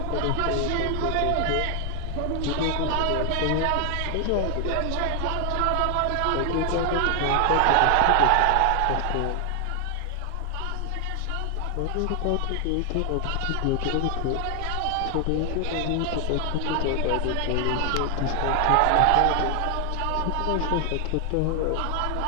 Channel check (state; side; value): different; both; correlation 0.00